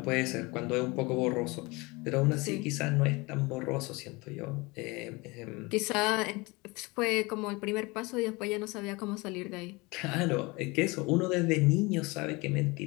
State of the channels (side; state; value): right; quieter; 24.9 dB